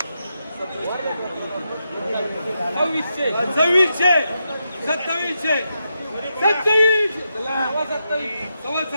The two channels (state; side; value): inverted; both; correlation -0.85